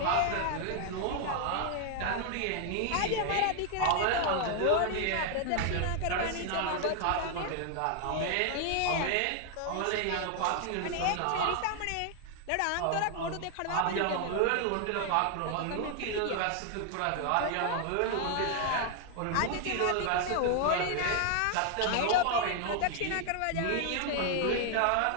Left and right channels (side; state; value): both; different; correlation 0.00